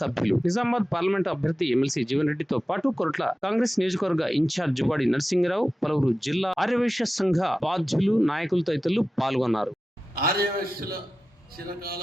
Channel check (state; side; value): normal; both; correlation 0.94